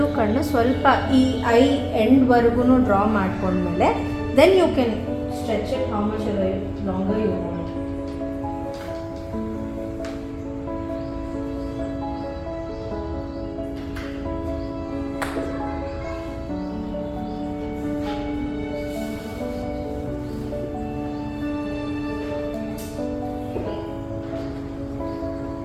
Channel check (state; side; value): identical; both; correlation 1.00